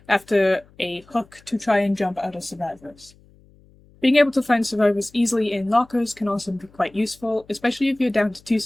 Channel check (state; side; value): noise; left; hum, 28 dB below the sound